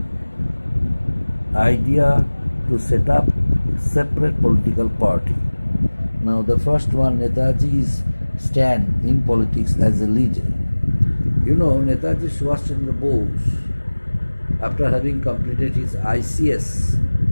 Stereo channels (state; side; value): inverted; both; correlation -1.00